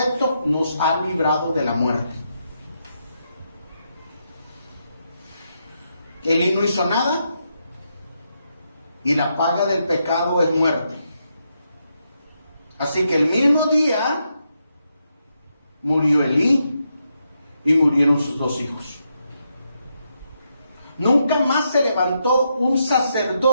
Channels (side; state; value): both; inverted; correlation -0.82